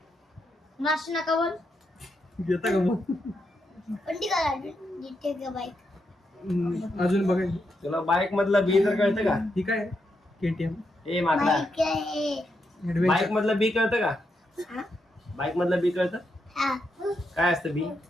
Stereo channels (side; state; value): both; normal; correlation 0.82